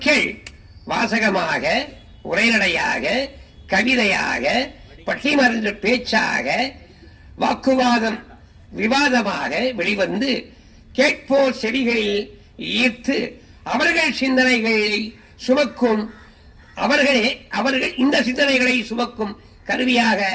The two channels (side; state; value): both; identical; correlation 1.00